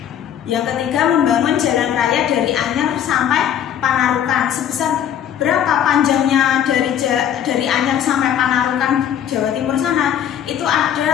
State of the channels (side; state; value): right; quieter; 9.7 dB